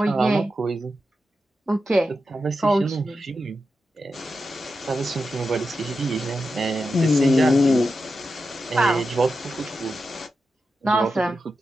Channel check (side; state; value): both; normal; correlation 0.89